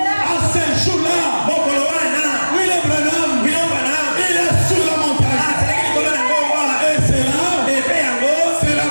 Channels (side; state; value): both; inverted; correlation -1.00